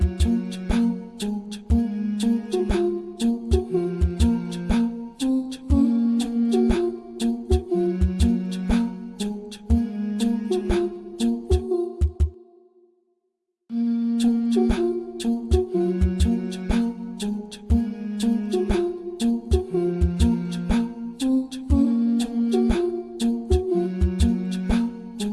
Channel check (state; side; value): identical; both; correlation 1.00